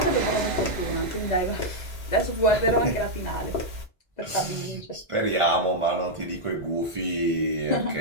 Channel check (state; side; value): normal; both; correlation -0.03